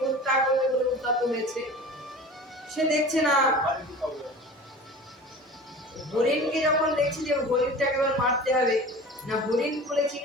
হত্যা করবে বলে উদ্যত হয়েছে, সে দেখছে না, হরিণকে যখন দেখছে যে হরিণটাকে এবার মারতে হবে, না হরিণ বলে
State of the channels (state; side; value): normal; both; correlation 0.38